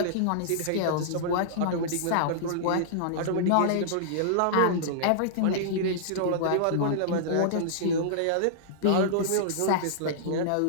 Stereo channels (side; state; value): both; different; correlation -0.02